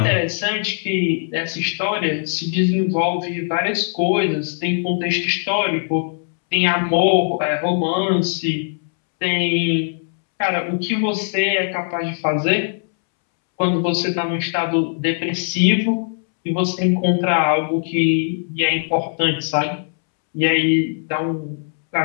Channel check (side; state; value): right; silent; 66 dB below the other